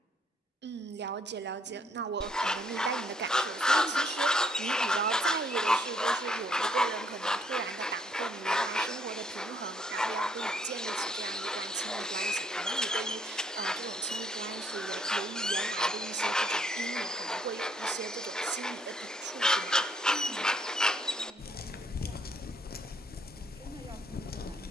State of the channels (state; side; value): normal; both; correlation 0.68